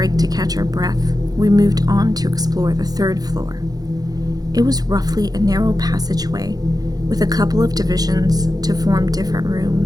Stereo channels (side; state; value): left; late; 0.19 ms